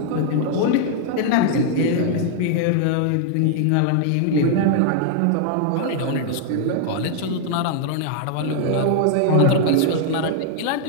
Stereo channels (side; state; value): both; different; correlation 0.00